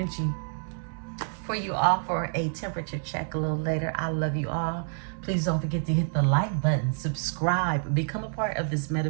for you all for a temperature check a little later. I love you all. Please don't forget to hit the like button, subscribe, become a part of this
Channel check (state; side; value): silent; left; 58 dB below the other